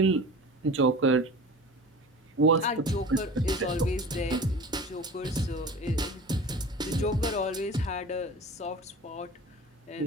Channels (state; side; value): normal; both; correlation 0.37